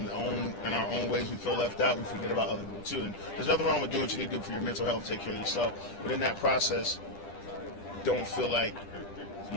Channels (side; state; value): right; late; 10 ms